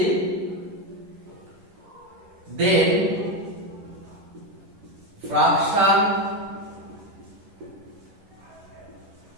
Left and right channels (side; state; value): left; late; 10 ms